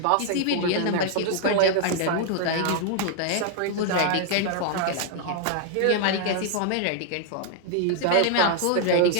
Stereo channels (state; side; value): different; both; correlation 0.00